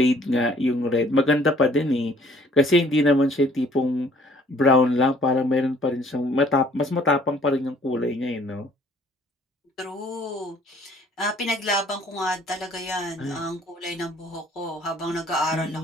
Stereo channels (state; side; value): normal; both; correlation 0.58